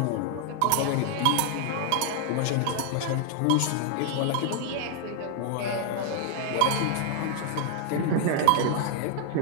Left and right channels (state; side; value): different; both; correlation 0.00